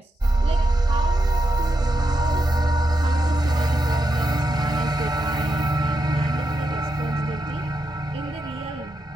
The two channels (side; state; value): both; normal; correlation 0.85